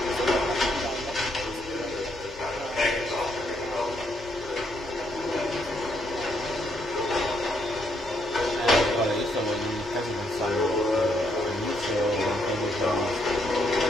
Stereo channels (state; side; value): normal; both; correlation 0.74